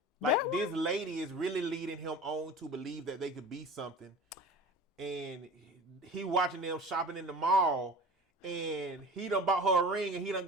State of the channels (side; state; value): both; normal; correlation 0.38